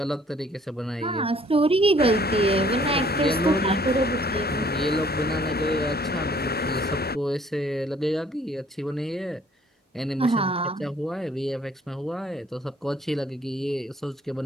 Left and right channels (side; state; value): both; normal; correlation 0.59